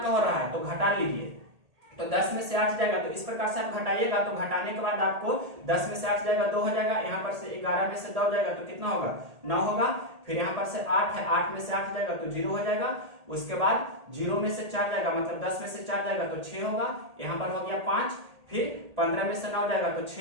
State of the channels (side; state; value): left; late; 1.8 ms